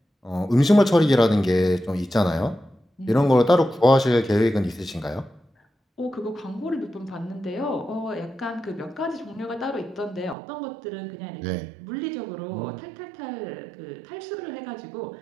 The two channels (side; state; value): left; drops out; at 10.4 s